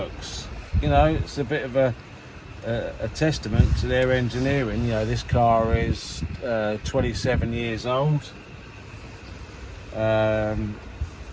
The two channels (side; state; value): both; identical; correlation 1.00